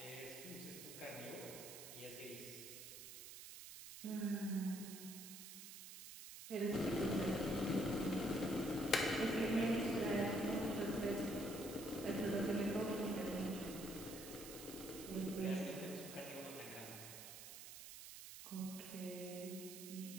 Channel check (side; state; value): right; noise; hiss, 11 dB below the sound